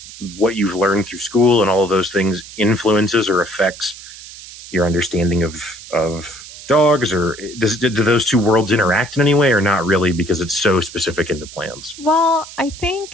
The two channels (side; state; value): right; noise; hiss, 16 dB below the sound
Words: what you've learned through school and all of those things influences or affects your understanding of dogs, or do those two worlds interact in any way, or not really, because it's so specific into plants? Well, I